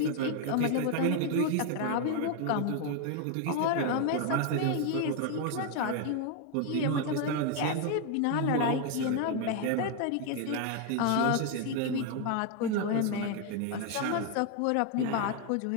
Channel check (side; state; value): both; different; correlation 0.01